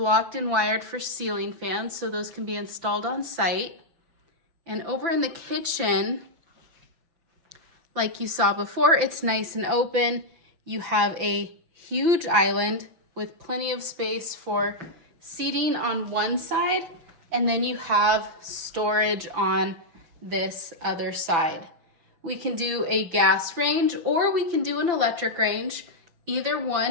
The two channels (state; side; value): late; left; 5.9 ms